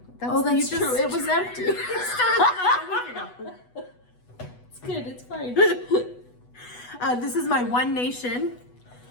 That's true. It was empty. It's good. It's fine. This is my One Nation.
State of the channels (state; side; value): late; right; 8.1 ms